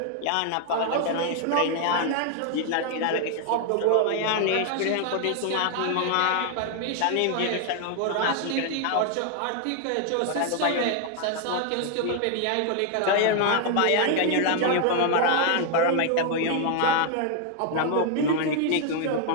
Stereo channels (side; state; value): both; different; correlation 0.00